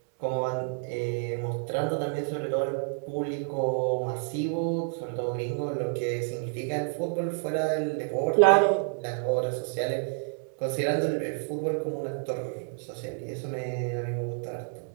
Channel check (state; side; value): silent; left; 58 dB below the other